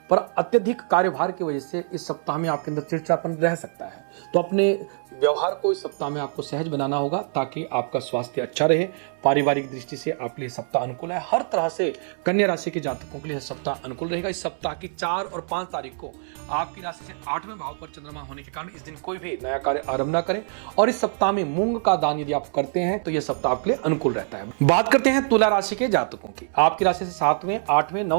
पर अत्यधिक कार्यभार की वजह से इस सप्ताह में आपके अंदर चिड़चिड़ापन रह सकता है। तो अपने व्यवहार को इस सप्ताह में आपको सहज बनाना होगा, ताकि आपका स्वास्थ्य अच्छा रहे। पारिवारिक दृष्टि से आपके लिए सप्ताह अनुकूल है। हर तरह से कन्या राशि के जातकों के लिए सप्ताह अनुकूल रहेगा। इस सप्ताह की 4 और 5 तारीख को आपकी राशि से 8वें भाव पर चंद्रमा होने के कारण इस दिन कोई भी नया कार्य आरंभ न करें। और इस सप्ताह में मूंग का दान यदि आप करते हैं तो यह सप्ताह आपके लिए अनुकूल रहता है। बात करते हैं तुला राशि के जातकों की। आपकी राशि से 7वें, 8वें,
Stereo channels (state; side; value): silent; left; 62 dB below the other